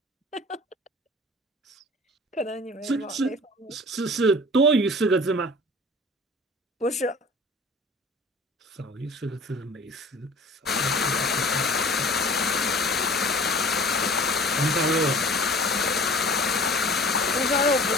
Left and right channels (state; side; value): normal; both; correlation 0.44